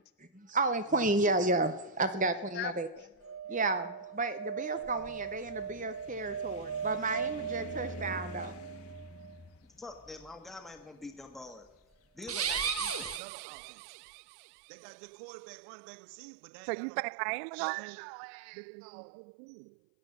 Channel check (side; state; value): left; drops out; at 13.2 s